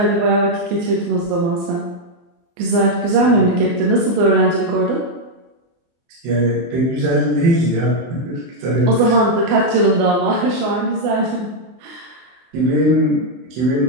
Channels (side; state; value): left; late; 23 ms